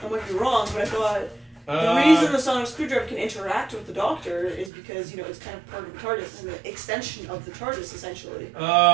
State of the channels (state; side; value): drops out; left; at 4.7 s